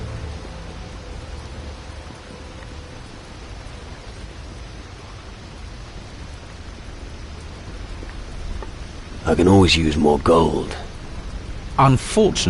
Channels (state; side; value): identical; both; correlation 1.00